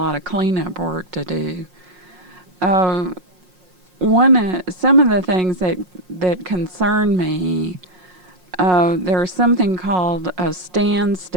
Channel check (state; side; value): late; left; 5.6 ms